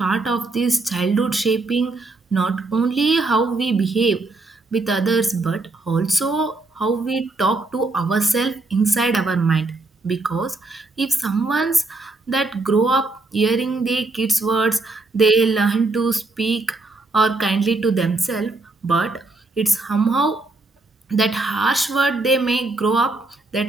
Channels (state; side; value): quieter; left; 3.3 dB